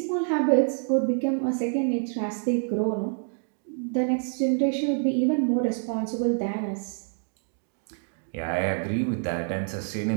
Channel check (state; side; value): silent; left; 56 dB below the other